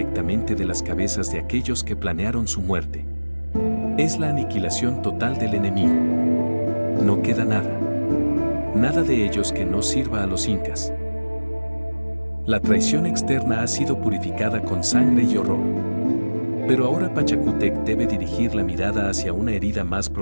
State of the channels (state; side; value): inverted; both; correlation -1.00